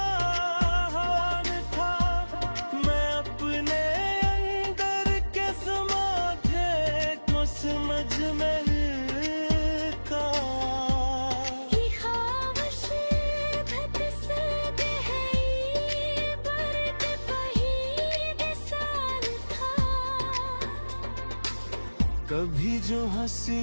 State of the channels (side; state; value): both; inverted; correlation -1.00